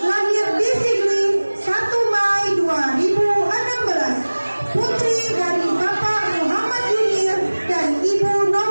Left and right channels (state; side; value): inverted; both; correlation -1.00